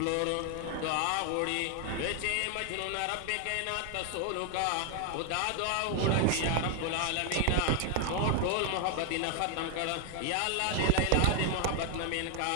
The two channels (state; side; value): different; both; correlation 0.00